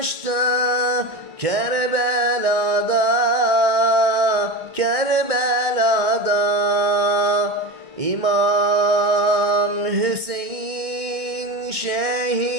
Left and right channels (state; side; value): late; left; 1.6 ms